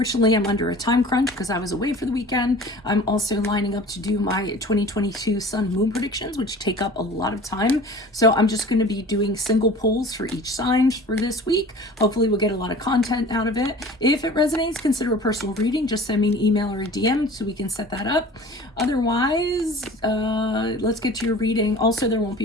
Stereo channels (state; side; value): normal; both; correlation 0.43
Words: I'm under a time crunch because I was away for the weekend. I'm also lining up to do my 2022 sun moon predictions, which take up a lot of time. So I'm just going to be doing single polls for each sign for this week. Hopefully we'll get a lot of content out of it. If it resonates, consider a personal reading. Just send me an email or a DM so we can set that up. Otherwise, let's get to your reading. Also, there won't